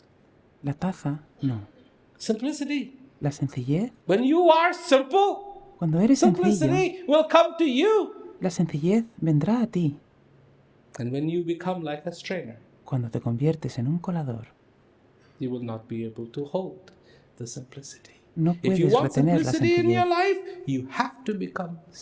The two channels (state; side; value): identical; both; correlation 1.00